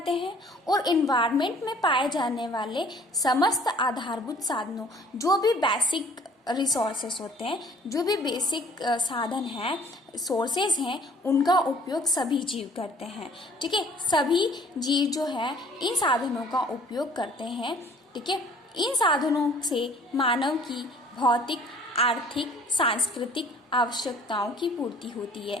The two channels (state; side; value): normal; both; correlation 0.54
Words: हैं, और इन्वायरमेंट में पाए जाने वाले समस्त आधारभूत साधनों, जो भी बेसिक रिसोर्सेस होते हैं, जो भी बेसिक साधन हैं, सोर्सेज हैं, उनका उपयोग सभी जीव करते हैं। ठीक है, सभी जीव जो है इन साधनों का उपयोग करते हैं। ठीक है, इन साधनों से मानव की भौतिक, आर्थिक, सांस्कृतिक आवश्यकताओं की पूर्ति होती है।